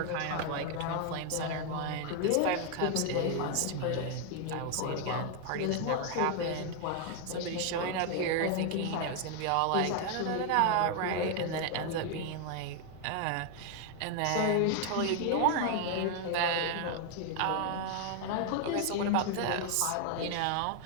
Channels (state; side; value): different; both; correlation 0.00